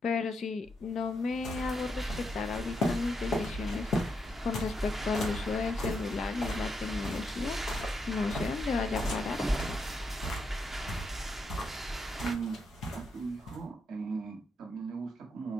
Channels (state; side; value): normal; both; correlation 0.81